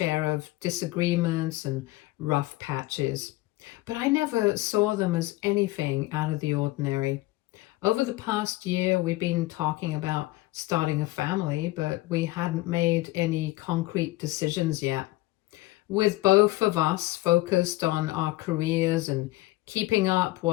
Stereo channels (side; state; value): right; quieter; 19.3 dB